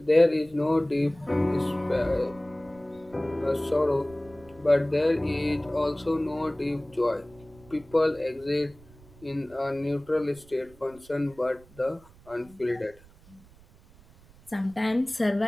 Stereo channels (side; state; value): right; noise; rumble, 25 dB below the sound